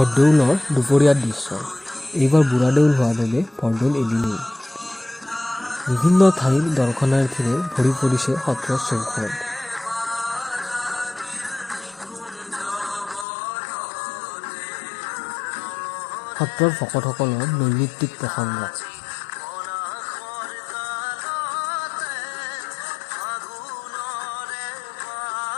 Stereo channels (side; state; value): right; drops out; at 13.2 s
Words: দুপৰীয়াৰ দৃশ্য। এইবাৰ বুঢ়াদেউল হোৱা বাবে বৰদৌল এদিনেই। বিভিন্ন ঠাইৰ দৰ্শনাৰ্থীৰে ভৰি পৰিছে সত্ৰৰ চৌহদ। সত্ৰৰ ভকতসকলৰ নৈমিত্তিক প্ৰসংগ।